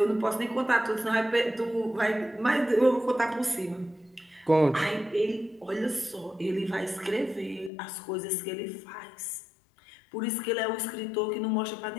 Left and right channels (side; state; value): right; drops out; at 7.7 s